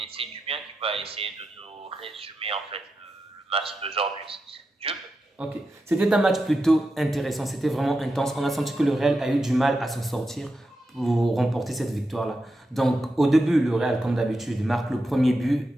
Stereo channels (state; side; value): normal; both; correlation 0.89